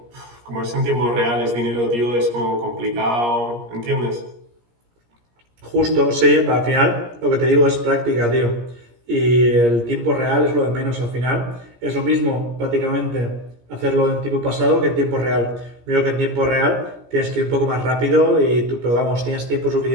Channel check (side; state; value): left; late; 17 ms